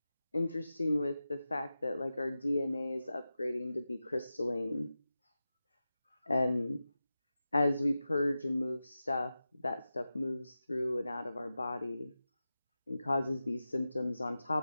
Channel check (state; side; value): inverted; both; correlation -0.93